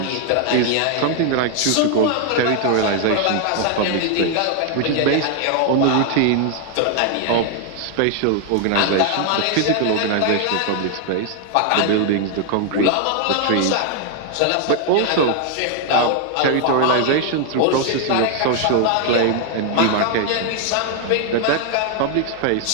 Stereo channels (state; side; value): different; both; correlation 0.00